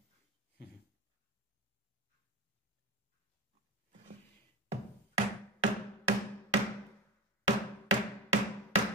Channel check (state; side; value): normal; both; correlation 0.25